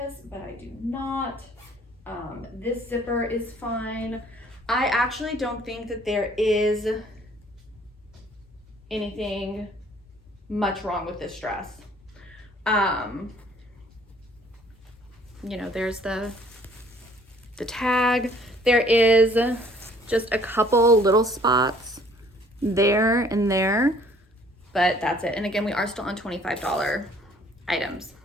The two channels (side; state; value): both; normal; correlation 0.58